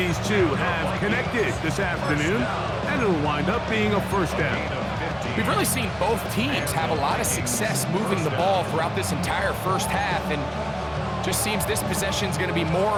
two have connected this afternoon, and it'll wind up being a first down. We've really seen both teams have a lot of success moving the ball throughout this entire first half, and just seems this possession's going to be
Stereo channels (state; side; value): identical; both; correlation 1.00